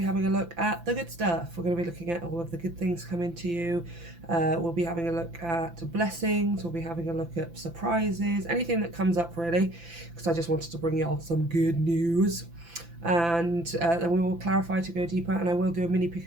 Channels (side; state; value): left; late; 5.9 ms